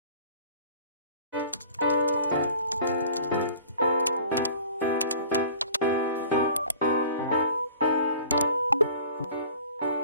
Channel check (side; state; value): both; inverted; correlation -0.47